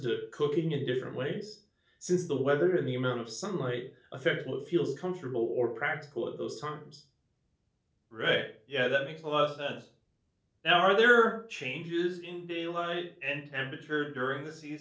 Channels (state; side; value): identical; both; correlation 1.00